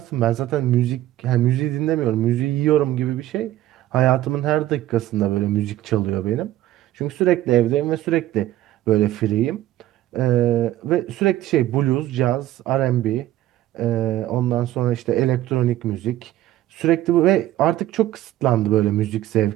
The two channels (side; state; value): left; quieter; 14.1 dB